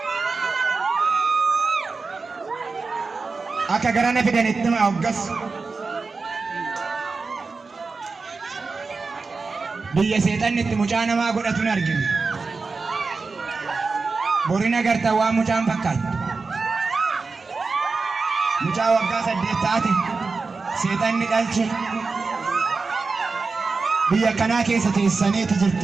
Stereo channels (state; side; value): quieter; left; 4.2 dB